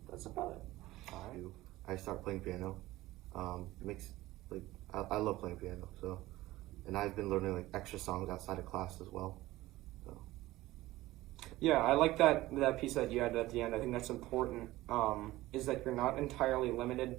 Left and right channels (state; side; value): quieter; left; 17.4 dB